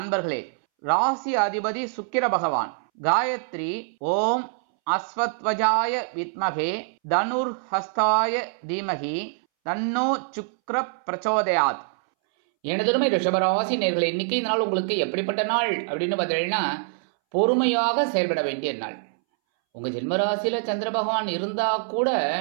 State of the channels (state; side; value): silent; left; 62 dB below the other